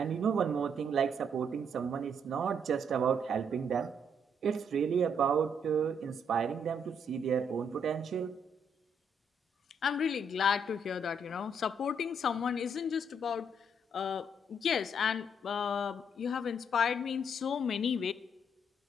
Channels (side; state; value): both; normal; correlation 0.72